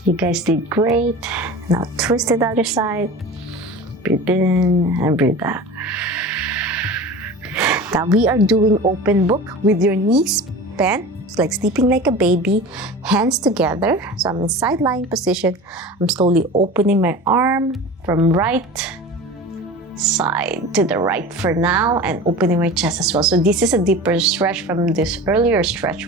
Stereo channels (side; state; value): both; normal; correlation 0.34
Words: You guys did great. Now twist to the other side. Breathe in and breathe out. Now we are doing Opemn Book with your knees bent. It's like sleeping like a baby, hands together. So I'm in side lying position. I'm slowly opening my arm from right side to the right for now and opening my chest as well. So this is a deeper stretch from this earlier stretch